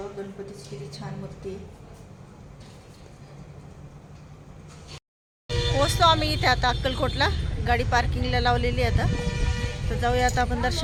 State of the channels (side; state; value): both; identical; correlation 1.00